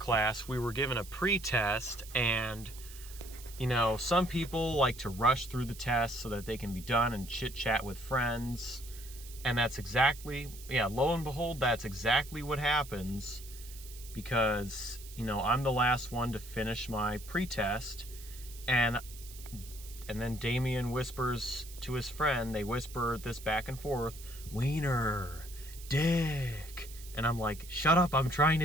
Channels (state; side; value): noise; right; hiss, 16 dB below the sound